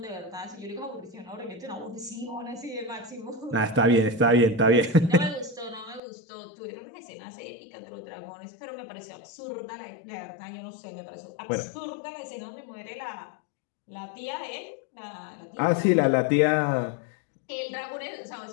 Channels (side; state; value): right; drops out; at 6.0 s